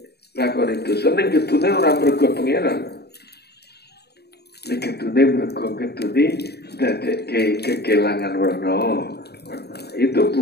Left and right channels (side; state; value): right; late; 0.47 ms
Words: lakoni dosa, ning ketune ora mergo pangeran, ning ketune mergo ketune dadekke kekelangan warna. Itu